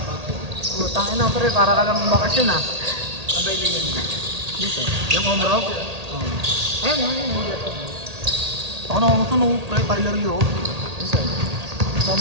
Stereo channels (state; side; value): late; left; 1.8 ms